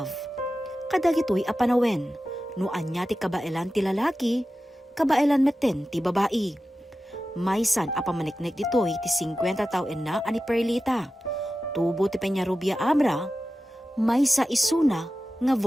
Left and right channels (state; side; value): normal; both; correlation 0.94